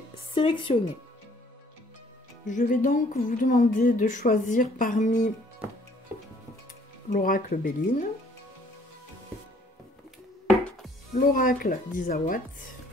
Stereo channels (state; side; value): normal; both; correlation 0.60